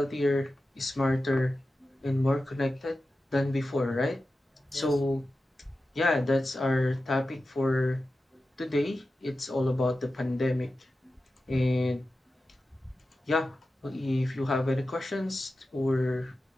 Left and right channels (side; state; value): both; normal; correlation 0.93